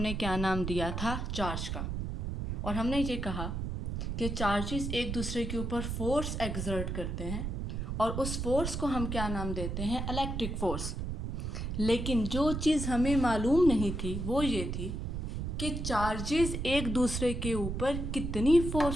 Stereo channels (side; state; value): right; noise; rumble, 3 dB below the sound